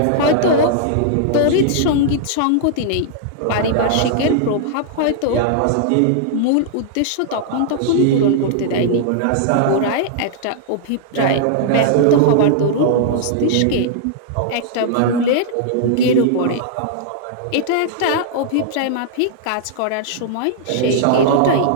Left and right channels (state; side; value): different; both; correlation -0.01